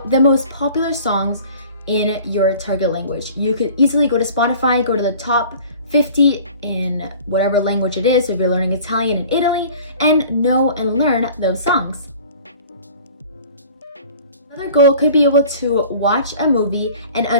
the most popular songs in your target language. You could easily go to Spotify, go to the top 50 in whatever language it is, if you're learning Italian in Italy, and know and learn those songs. Another goal could be able to watch a movie and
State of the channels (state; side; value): inverted; both; correlation -0.46